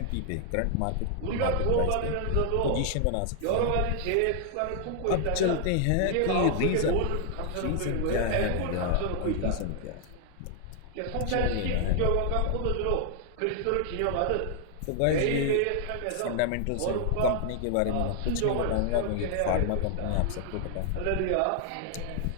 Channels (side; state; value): both; different; correlation 0.00